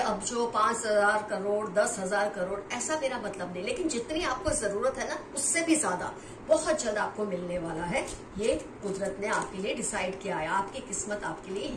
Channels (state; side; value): identical; both; correlation 1.00